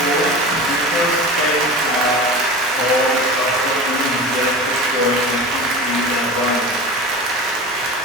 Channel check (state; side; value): normal; both; correlation 0.31